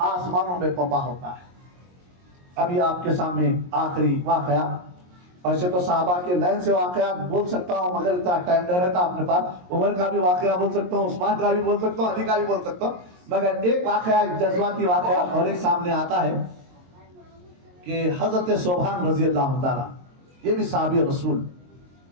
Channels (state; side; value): late; left; 22 ms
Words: آسمانوں میں پپا ہوتا ہے. ابھی آپ کے سامنے آخری واقعہ, ایسے تو صحابہ کے لائن سے واقعات بول سکتا ہوں مگر اتنا ٹائم نہیں رہتا اپنے پاس. عمر کا بھی واقعہ بول سکتا ہوں, عثمان کا بھی بول سکتا ہوں, علی کا بھی بول سکتا ہوں, مگر ایک واقعہ, ایک جذباتی واقعہ اور ایک سامنے آتا ہے کہ حضرت صوبان رضی اللہ تعالیٰ, یہ بھی صحابی رسول,